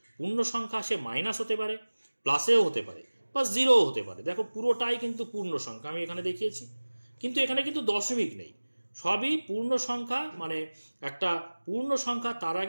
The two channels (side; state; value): both; inverted; correlation -1.00